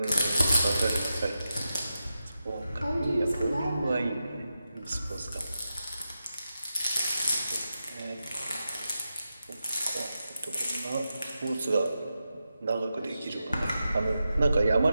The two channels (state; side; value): inverted; both; correlation -0.90